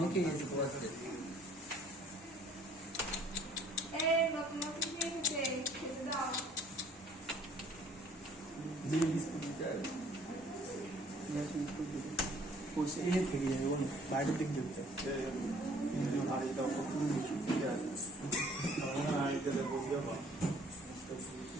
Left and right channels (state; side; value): normal; both; correlation 0.57